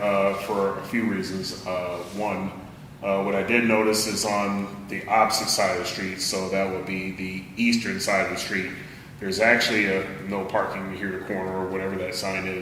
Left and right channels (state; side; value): identical; both; correlation 1.00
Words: for a few reasons. One, what I did notice is on the opposite side of the street, so that would be the eastern side of the street, there's actually a no parking here to corner or whatever that sign